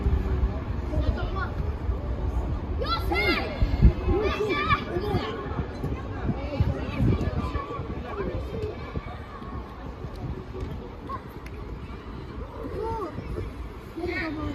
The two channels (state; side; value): identical; both; correlation 1.00